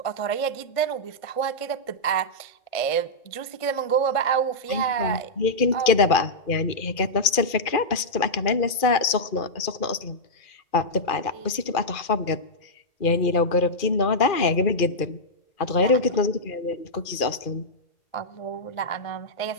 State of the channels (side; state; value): right; late; 2.4 ms